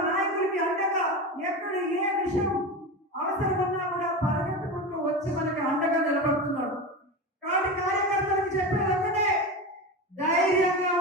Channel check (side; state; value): both; normal; correlation 0.23